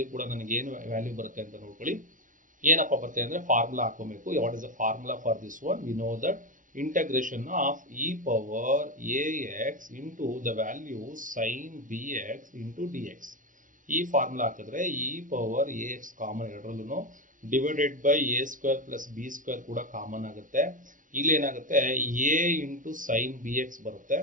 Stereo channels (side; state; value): left; late; 0.38 ms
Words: ಕೂಡ ನನಗೆ ಏನು ವ್ಯಾಲ್ಯೂ ಬರುತ್ತೆ ಅಂತ ನೋಡ್ಕೊಳ್ಳಿ. ಏನಪ್ಪ ಬರುತ್ತೆ ಅಂದರೆ ಫಾರ್ಮುಲಾ ಹಾಕೋಬೇಕು. What is the formula for this one? We know that integration of e power a x into the value sine b x into d x. ಈ ಫಾರ್ಮುಲಾ ಹಾಕಿದ್ರೆ e power a x common ಎರಡರಲ್ಲೂ divided by a square plus b square ಕೂಡ common ಆಗುತ್ತೆ. ಇಲ್ಲಿ ಏನಾಗುತ್ತೆ a into sine b x ಬರುತ್ತೆ.